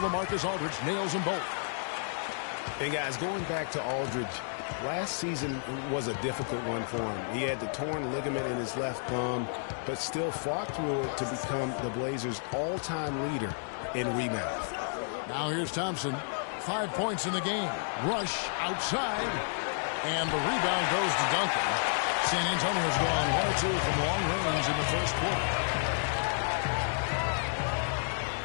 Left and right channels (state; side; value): silent; right; digital silence